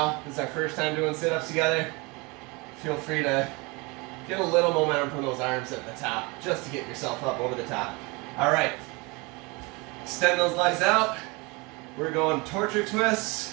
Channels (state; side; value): quieter; left; 26.8 dB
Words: this is our first time doing sit-ups together. Feel free to get a little momentum from those arms at the top, just to get yourself up over the top. All right, extend those legs out. We're going torture